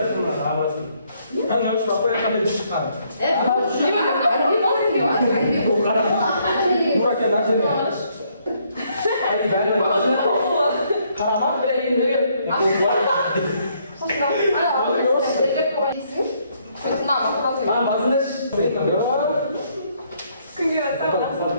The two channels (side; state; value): both; inverted; correlation -0.70